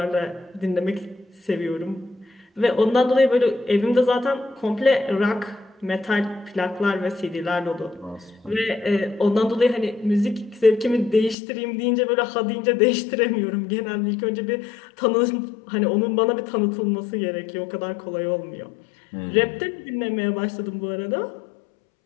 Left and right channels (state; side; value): drops out; right; at 11.4 s